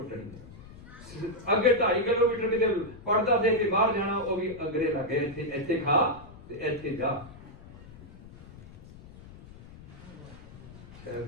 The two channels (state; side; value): noise; left; rumble, 18 dB below the sound